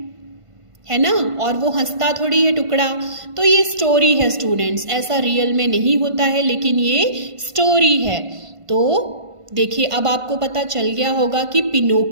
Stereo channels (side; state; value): left; late; 1.5 ms